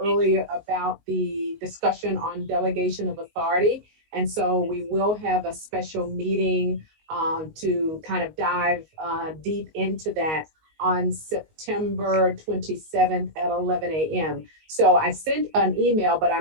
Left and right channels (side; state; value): left; late; 19 ms